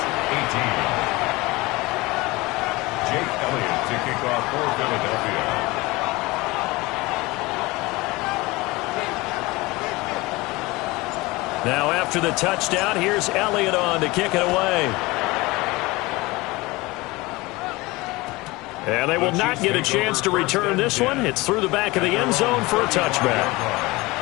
18. Jake Elliott to kick off for Philadelphia. Now after the touchdown, here's Elliott on to kick it away. And they will not get a chance to return this one. It's through the back of the end zone for a touchback.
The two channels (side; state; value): right; quieter; 22.1 dB